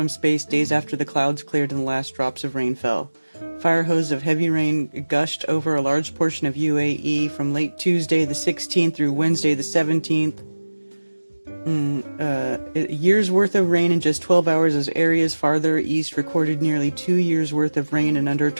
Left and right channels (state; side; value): inverted; both; correlation -1.00